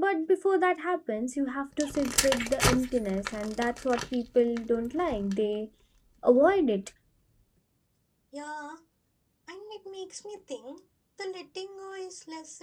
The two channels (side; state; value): both; identical; correlation 1.00